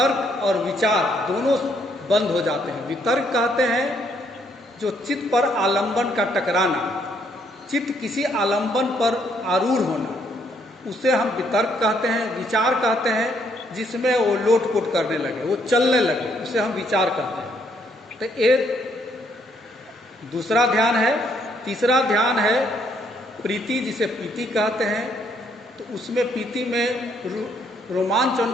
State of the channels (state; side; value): normal; both; correlation 0.70